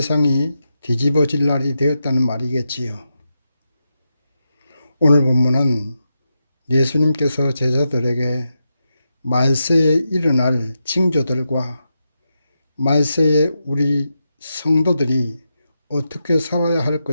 뒤집어질 날이 되었다는 말이겠지요. 오늘 본문은 예수님께서 제자들에게 말세에 일어날 징조들과 말세에 우리 성도들이 어떻게 살아야 할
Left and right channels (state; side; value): inverted; both; correlation -0.87